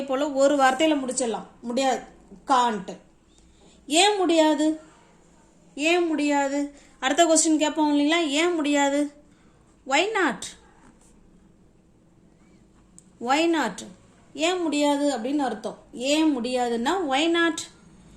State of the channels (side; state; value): both; identical; correlation 1.00